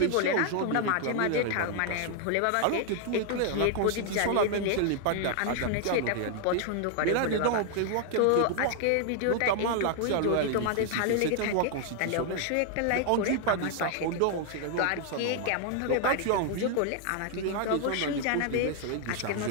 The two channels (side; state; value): both; different; correlation 0.00